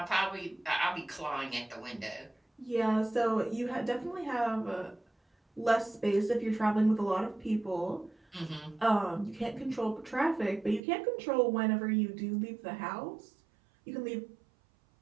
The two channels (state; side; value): drops out; left; at 10.8 s